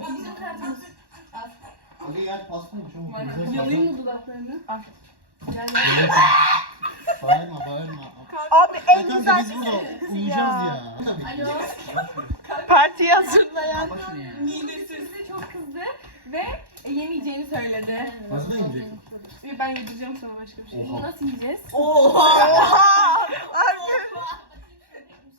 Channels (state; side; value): late; left; 1.1 ms